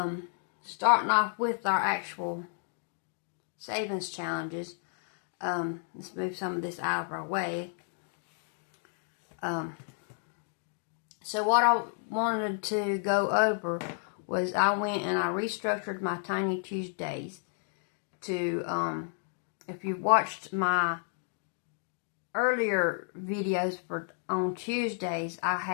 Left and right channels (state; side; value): silent; right; 57 dB below the other